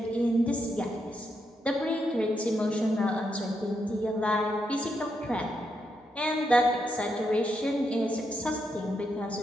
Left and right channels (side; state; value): both; normal; correlation 0.81